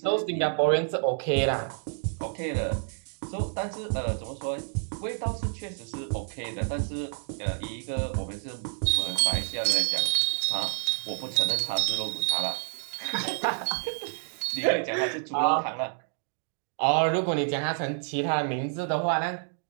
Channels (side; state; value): left; silent; digital silence